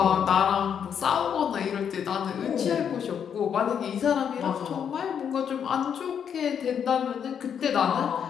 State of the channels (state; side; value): quieter; right; 8.0 dB